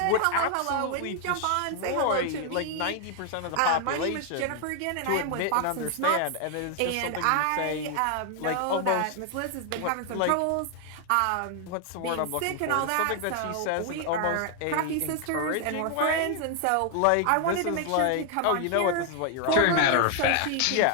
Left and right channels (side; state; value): both; different; correlation 0.00